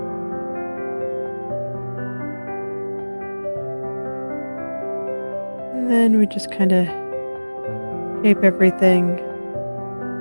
And then we just kind of shape everything.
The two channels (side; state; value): both; inverted; correlation -1.00